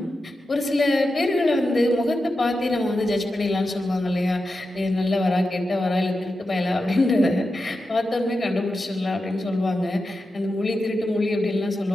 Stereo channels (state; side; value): normal; both; correlation 0.90